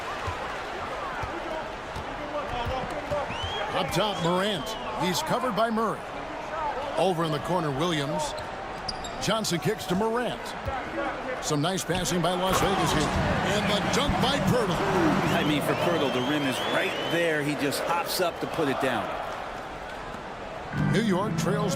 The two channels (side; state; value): both; identical; correlation 1.00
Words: Up top, Morant. He's covered by Murray. Over in the corner, Williams. Johnson kicks to Morant. Some nice passing by Las Vegas here. And the dunk by Pirtle. I mean, for Pirtle, the rim is right there. He just hops up to put it down. New York trails